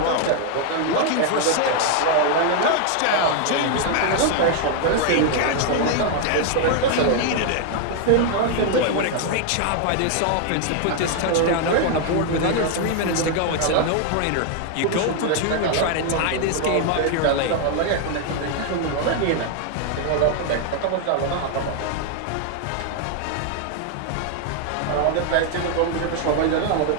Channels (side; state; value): both; different; correlation 0.00